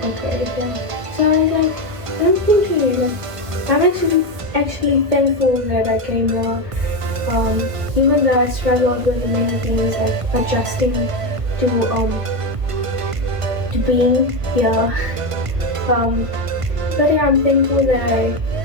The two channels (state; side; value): late; left; 1.5 ms